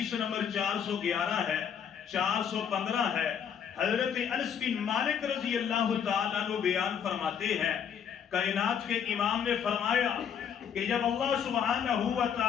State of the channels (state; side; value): quieter; right; 8.0 dB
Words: نمبر 411 ہے، 415 ہے۔ حضرت انس بن مالک رضی اللہ تعالیٰ عنہ بیان فرماتے ہیں، کائنات کے امام نے فرمایا کہ جب اللہ سبحانہ و